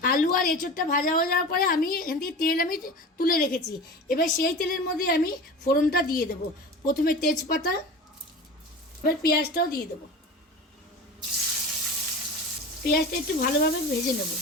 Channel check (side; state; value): both; normal; correlation 0.33